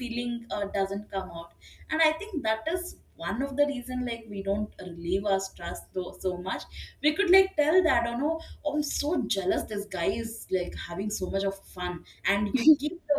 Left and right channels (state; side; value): identical; both; correlation 1.00